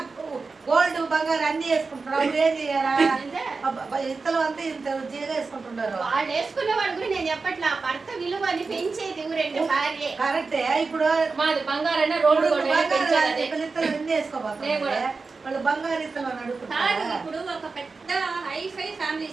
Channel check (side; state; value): left; quieter; 4.3 dB